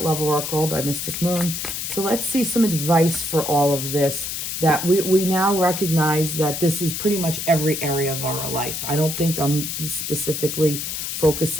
Love Oracle by Mystic Moon. So let's see some advice for all of this, that we now recognize that this is pretty much every area of our life. I don't think I'm specifically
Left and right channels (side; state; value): left; noise; hiss, 4 dB below the sound